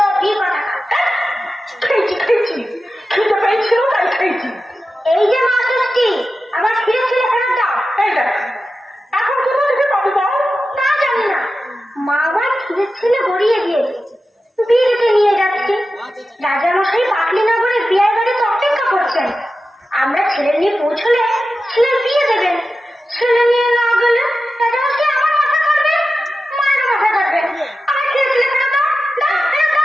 কথা। খেয়েছি খিদে পেয়েছিল তাই খেয়েছি। এই যে মা ষষ্ঠী, আমার ছিঁড়ে ছিঁড়ে ফেরত দাও। এই দেখ, এখন কোথা থেকে পাবি বল? তা জানি না, মা আমার ছিঁড়ে ছিঁড়ে গড়িয়ে দিয়েছে, বিয়েতে নিয়ে যাচ্ছি। রাজামশাই পাটলিনগরে বিয়ের বাড়িতে অপেক্ষা করছেন। আমরা ছেলে নিয়ে পৌঁছলে ছেলের বিয়ে দেবেন। ছেলে নিয়ে না গেলে রাজামশাই আমার মাথা কাটবে, মায়ের মাথা কাটবে। আমার ছিঁড়ে ছিঁড়ে ফেরত দাও, দাও, ফেরত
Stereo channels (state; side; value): normal; both; correlation 0.92